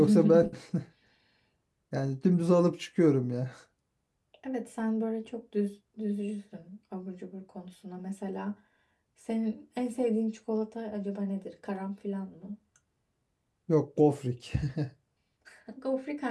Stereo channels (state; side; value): identical; both; correlation 1.00